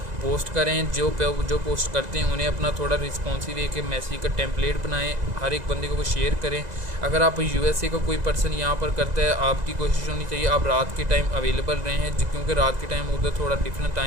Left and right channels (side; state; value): left; late; 2.0 ms